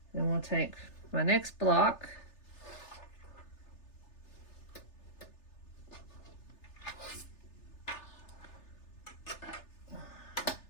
Then we'll take my next block.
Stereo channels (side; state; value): right; late; 3.3 ms